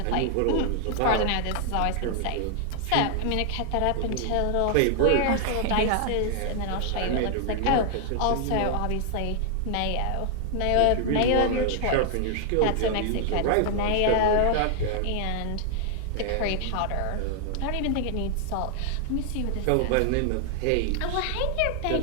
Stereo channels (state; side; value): different; both; correlation 0.00